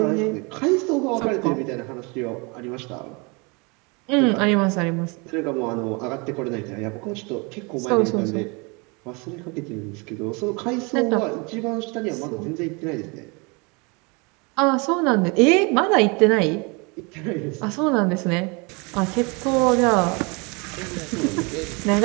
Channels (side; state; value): left; quieter; 29.6 dB